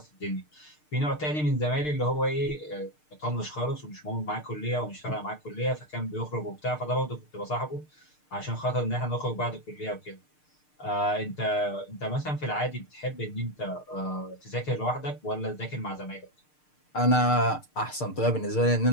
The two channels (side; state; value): right; late; 6.6 ms